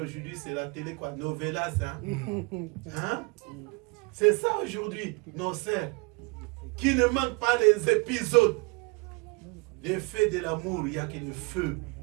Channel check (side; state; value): left; quieter; 28.9 dB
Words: c'est la télé, quoi, novelas, hein? C'est ça aujourd'hui, nos sœurs, qui ne manquent pas les épisodes. Les faits de l'amour, il n'y a que le feu.